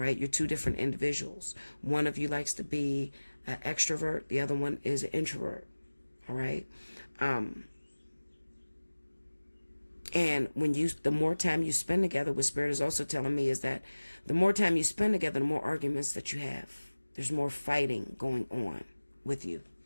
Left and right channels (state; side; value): inverted; both; correlation -1.00